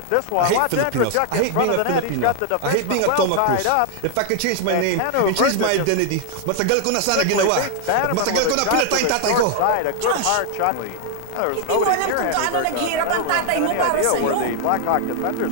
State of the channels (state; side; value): different; both; correlation 0.00